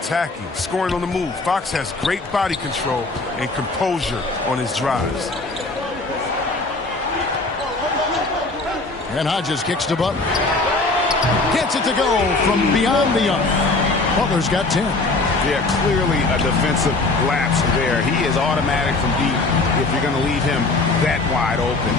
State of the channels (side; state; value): right; quieter; 3.3 dB